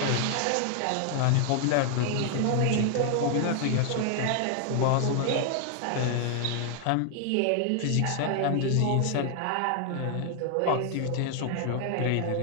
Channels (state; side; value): different; both; correlation 0.00